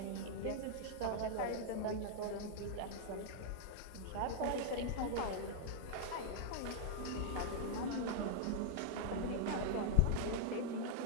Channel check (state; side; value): different; both; correlation -0.01